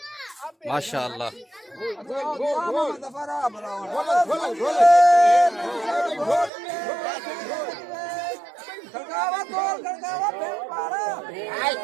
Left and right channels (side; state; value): left; drops out; at 6.5 s